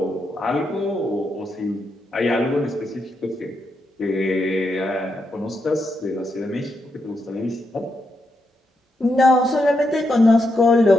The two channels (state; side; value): normal; both; correlation 0.82